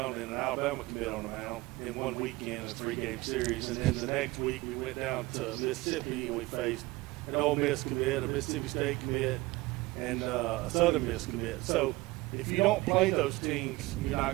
and an Alabama commit on the mound in one weekend, a 3-game series. And then the next week we went down to Mississippi and we faced an Ole Miss commit, a Mississippi State commit, and a Southern Miss commit. So if you don't play those teams, you're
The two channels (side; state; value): left; quieter; 20.9 dB